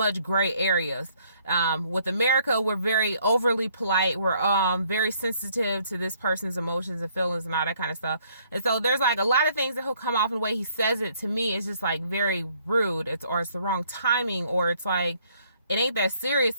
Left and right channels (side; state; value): both; inverted; correlation -0.65